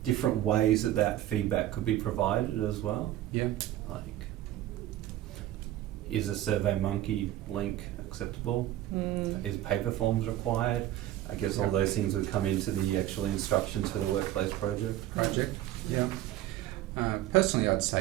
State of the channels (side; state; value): left; quieter; 13.8 dB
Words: different ways that feedback could be provided as well. Yeah. Like, is a SurveyMonkey link acceptable? Is paper forms required? I guess all those things would come into the actual instructions for the workplace project. Yeah. Personally, I'd